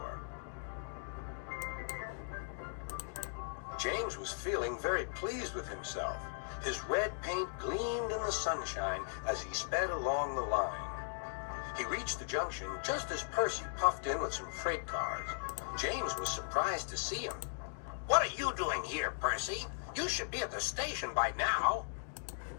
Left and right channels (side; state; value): right; silent; digital silence